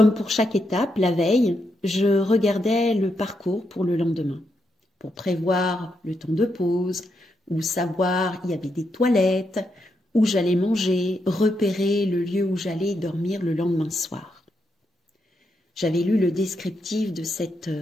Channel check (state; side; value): normal; both; correlation 0.81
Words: pour chaque étape, la veille, je regardais le parcours pour le lendemain, pour prévoir le temps de pause, ou savoir il y avait des toilettes, où j'allais manger, repérer le lieu où j'allais dormir le lendemain soir. J'avais lu le descriptif de cette